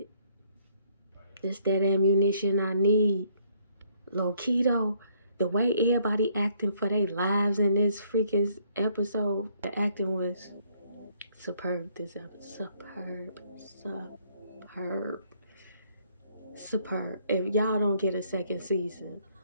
This that ammunition I need. Low-key though, the way everybody acting for their lives in this freaking episode, the acting was superb this episode. Superb. If y'all don't get a second season,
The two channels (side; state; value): both; inverted; correlation -0.67